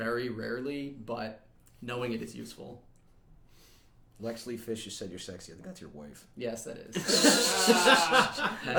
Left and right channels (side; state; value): both; identical; correlation 1.00